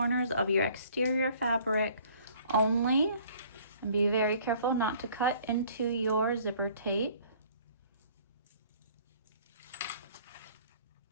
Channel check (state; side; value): inverted; both; correlation -0.55